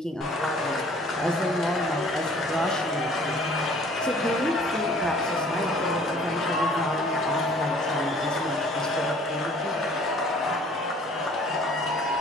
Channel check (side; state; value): both; normal; correlation 0.53